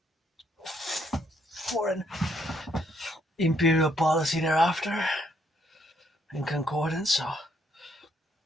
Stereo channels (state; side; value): normal; both; correlation 0.71